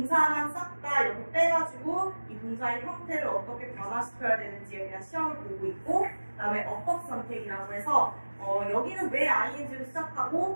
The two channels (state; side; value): inverted; both; correlation -1.00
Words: 싹 다 이렇게 빼가지고 이 동사의 형태를 어떻게 변화시켜야 되는지에 대한 시험을 보고 있고, 그 다음에 어법 선택이라고 해서 여기는 왜 ing로